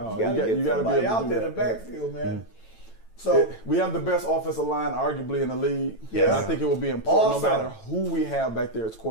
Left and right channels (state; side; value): late; right; 9.0 ms